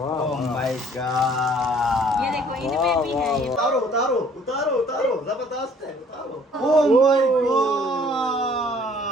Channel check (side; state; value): both; normal; correlation 0.57